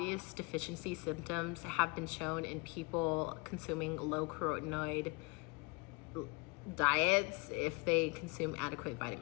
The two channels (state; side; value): quieter; right; 28.3 dB